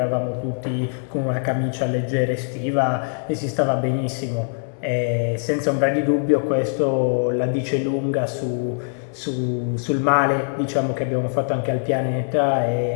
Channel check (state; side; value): silent; right; 63 dB below the other